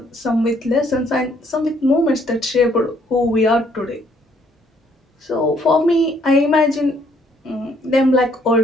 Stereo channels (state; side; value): normal; both; correlation 0.65